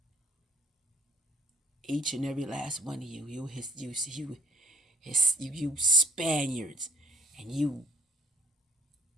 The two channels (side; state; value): both; normal; correlation 0.59